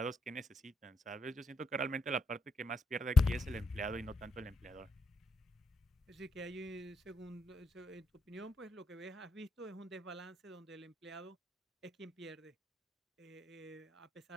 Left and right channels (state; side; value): normal; both; correlation 0.82